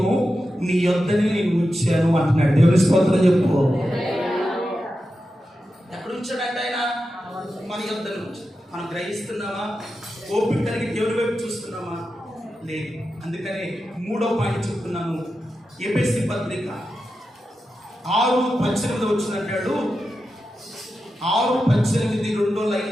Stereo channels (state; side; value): normal; both; correlation 0.90